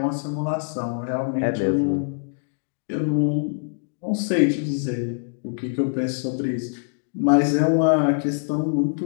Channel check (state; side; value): silent; right; digital silence